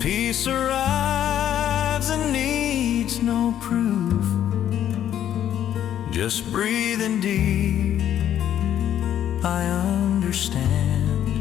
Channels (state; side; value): quieter; right; 10.7 dB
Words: arrives and needs no proof. Just breathing deep, I understand